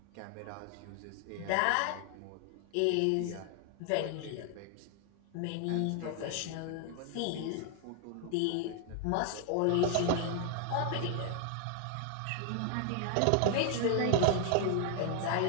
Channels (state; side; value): different; both; correlation 0.00